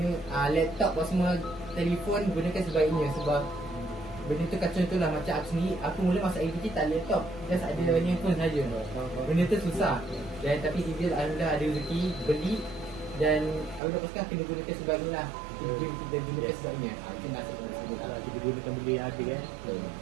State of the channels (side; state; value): left; drops out; at 13.8 s